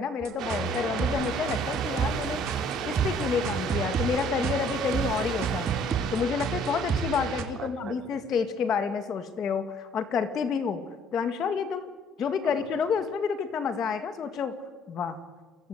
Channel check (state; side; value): normal; both; correlation 0.59